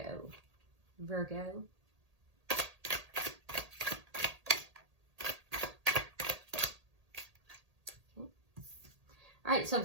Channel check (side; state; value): left; late; 1.8 ms